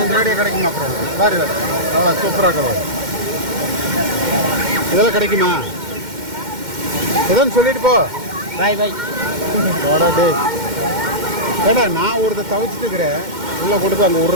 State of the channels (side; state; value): left; late; 2.1 ms